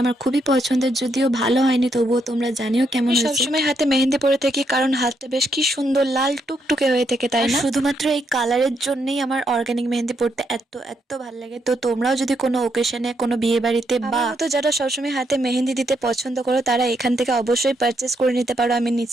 আমার খুবই পছন্দের, যদিও ভালো হয়নি, তবুও তোমরা জানিও কেমন হয়েছে। সবসময় হাতে মেহেন্দি পরে থাকি কারণ হাতটা বেশ কি সুন্দর লাল টুকটুকে হয়ে থাকে, তাই না? শুধুমাত্র এই কালারের জন্যই আমার অর্গানিক মেহেন্দি পড়তে এত এত ভালো লাগে। তো তোমরাও যদি কোনো ওকেশনে, কোনো বিয়ে বাড়িতে বা তো যারা সবসময় হাতে মেহেন্দি দিতে পছন্দ করো, তারা এখান থেকে অবশ্যই পারচেস করে নিতে পারো। আমি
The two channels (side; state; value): both; normal; correlation 0.77